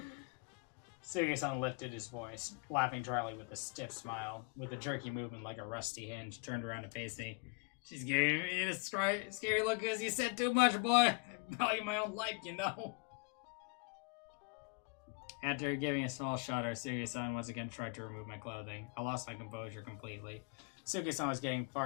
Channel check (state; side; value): quieter; right; 31.2 dB